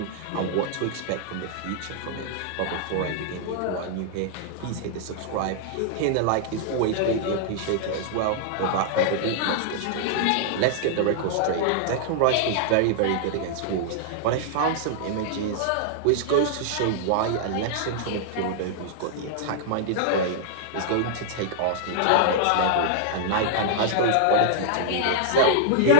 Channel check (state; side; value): different; both; correlation -0.01